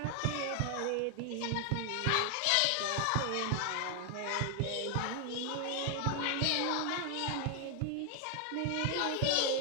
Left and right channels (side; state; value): both; different; correlation 0.00